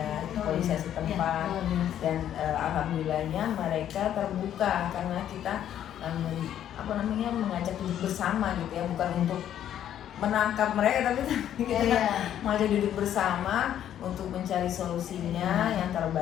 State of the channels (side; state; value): right; quieter; 10.7 dB